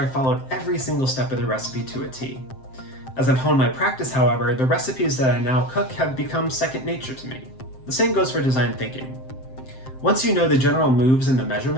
followed every single step of the recipe to a T. As I've honed my practice, however, the recipes that I now cook have become second nature to me. The same goes for design thinking. Once you know the general moves and the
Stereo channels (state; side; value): late; right; 7.7 ms